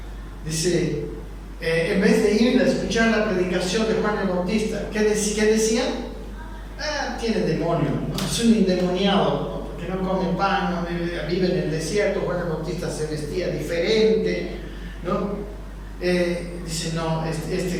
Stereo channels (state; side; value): identical; both; correlation 1.00